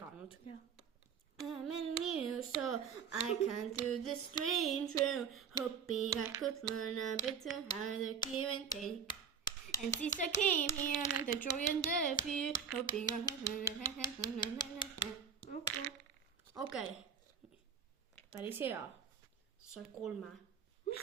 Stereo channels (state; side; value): quieter; left; 7.3 dB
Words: I'm in you, so I can do this strange room, hoping I could learn a bit to how to give and take. And since I came here, and the joy and the fear, hoping I Okei. Päris hea. Sai 3.